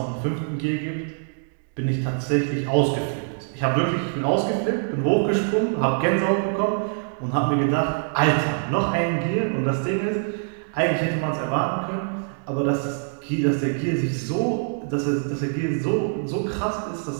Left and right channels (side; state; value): left; silent; digital silence